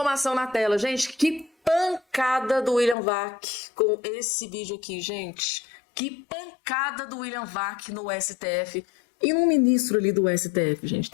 na tela, gente. Que pancada do William Vac com esse vídeo aqui, gente. Que pancada do William Vac no STF e no ministro ali do STF, gente,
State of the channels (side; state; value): right; drops out; at 3.0 s